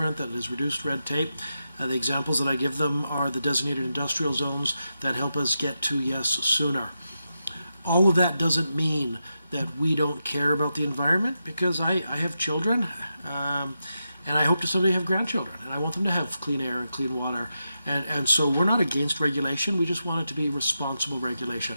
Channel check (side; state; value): both; inverted; correlation -0.88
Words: that has reduced red tape. The examples that I give them are the designated industrial zones that help us get to yes sooner. All of that doesn't mean that we don't care about the environment, because I have children, and I hope to someday have grandchildren, and I want them to have clean air and clean water. And so we're not against regulation, we just want it to be responsible regulation.